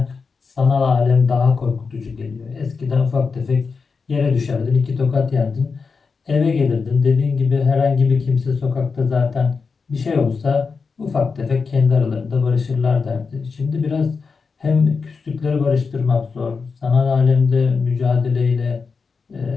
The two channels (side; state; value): right; quieter; 5.0 dB